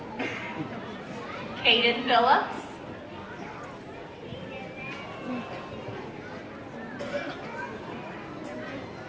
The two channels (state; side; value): identical; both; correlation 1.00